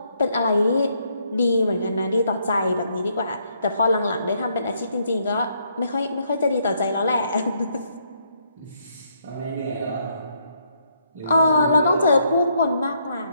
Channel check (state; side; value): inverted; both; correlation -0.73